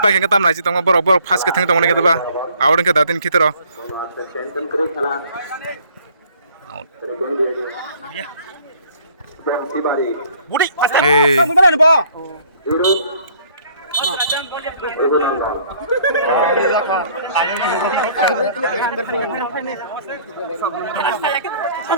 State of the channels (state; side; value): inverted; both; correlation -0.58